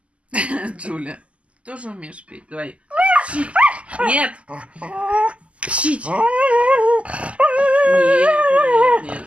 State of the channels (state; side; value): late; left; 0.060 ms